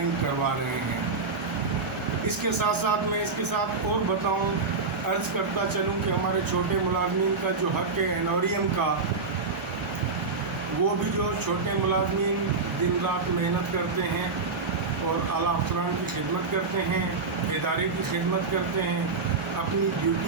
करवा रहे हैं। इसके साथ साथ मैं इसके साथ और बताऊं, अर्ज़ करता चलूं कि हमारे छोटे मुलाज़मीन का जो हक़ है एनोरियम का, वो भी जो छोटे मुलाज़मीन दिन रात मेहनत करते हैं और आला अफसरान की खिदमत करते हैं, इदारे की खिदमत करते हैं, अपनी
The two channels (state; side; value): quieter; left; 4.2 dB